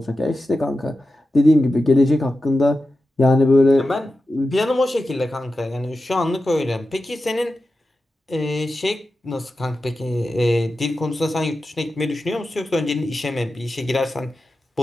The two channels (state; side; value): normal; both; correlation 0.92